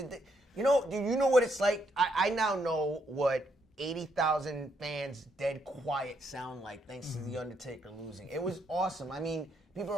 Do you know what it's like? I now know what 80,000 fans dead quiet sound like thanks to The Undertaker losing. It was awesome. I mean, people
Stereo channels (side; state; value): both; normal; correlation 0.75